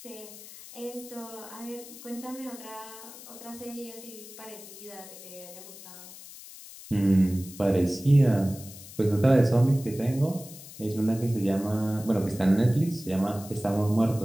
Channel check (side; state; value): left; noise; hiss, 16 dB below the sound